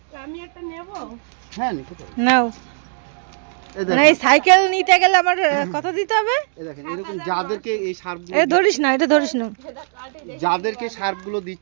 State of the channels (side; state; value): left; silent; digital silence